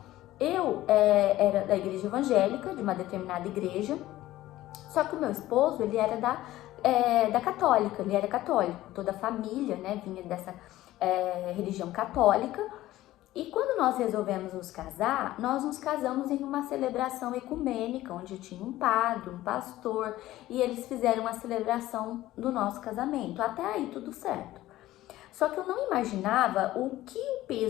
Eu era da igreja evangélica, de uma determinada igreja, só que o meu esposo, ele era da católica, ele era católico, toda a família, né, vinha dessa religião católica. E quando nós resolvemos nos casar, nós nos casamos em uma celebração ecumênica, onde tinha um padre, um pastor, e eles fizeram a celebração do nosso casamento. Até aí tudo certo. Só que eu não imaginava o que o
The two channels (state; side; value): quieter; right; 15.6 dB